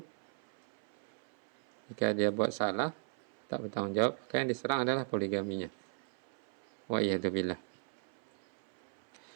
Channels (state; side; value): silent; left; 53 dB below the other